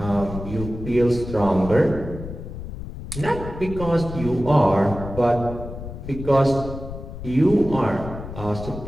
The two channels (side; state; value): left; noise; rumble, 10 dB below the sound